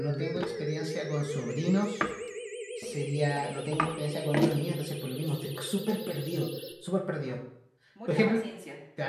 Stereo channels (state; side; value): identical; both; correlation 1.00